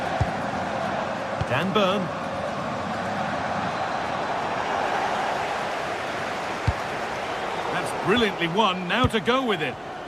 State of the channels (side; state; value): both; identical; correlation 1.00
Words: Dan Burn. That's brilliantly won. Now to go with it.